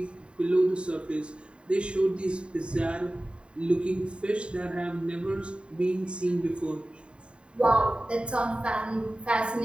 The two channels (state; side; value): late; left; 0.054 ms